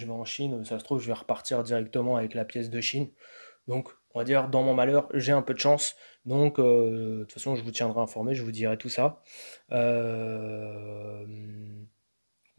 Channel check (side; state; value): both; inverted; correlation -1.00